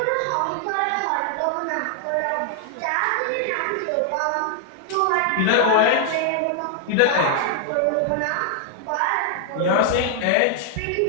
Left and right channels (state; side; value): different; both; correlation 0.00